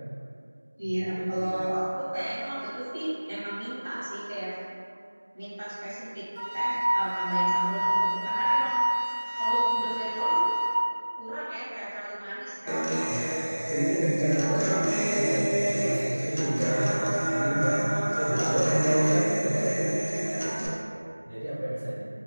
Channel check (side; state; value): both; inverted; correlation -1.00